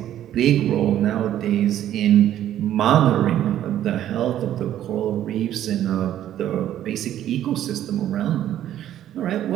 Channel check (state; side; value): quieter; left; 11.7 dB